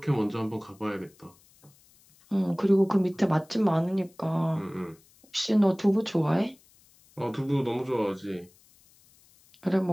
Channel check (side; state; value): left; noise; hiss, 30 dB below the sound